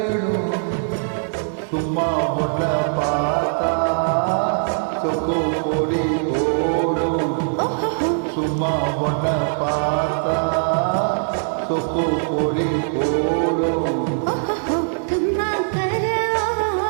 சும்மா ஒன்ன பார்த்தா சொக்கு பொடி போடும். சும்மா ஒன்ன பார்த்தா சொக்கு பொடி போடும். கம்மா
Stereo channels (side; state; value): left; silent; digital silence